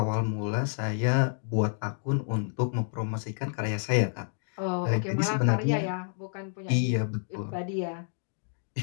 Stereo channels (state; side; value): silent; right; digital silence